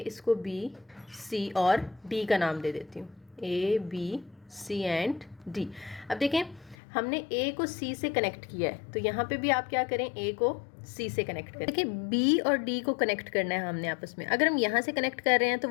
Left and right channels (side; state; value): right; drops out; at 6.8 s